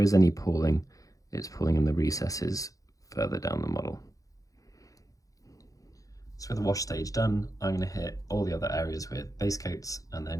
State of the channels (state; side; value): late; right; 0.17 ms